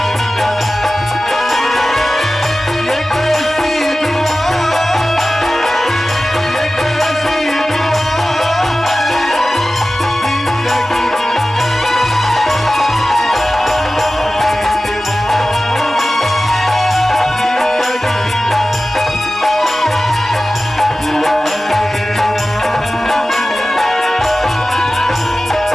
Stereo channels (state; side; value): normal; both; correlation 0.96